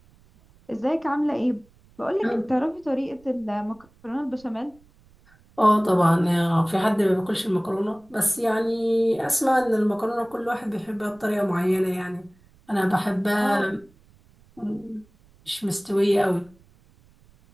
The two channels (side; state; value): right; noise; rumble, 30 dB below the sound